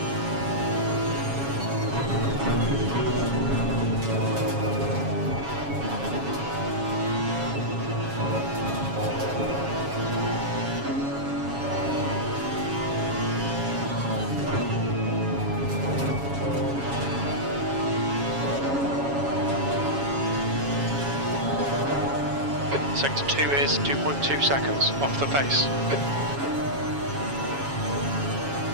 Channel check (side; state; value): left; late; 7.2 ms